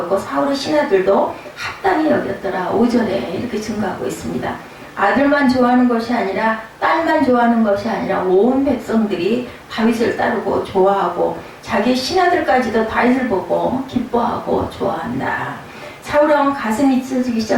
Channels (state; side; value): identical; both; correlation 1.00